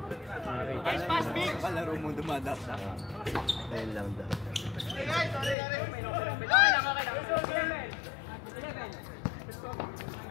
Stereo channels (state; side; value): drops out; right; at 5.6 s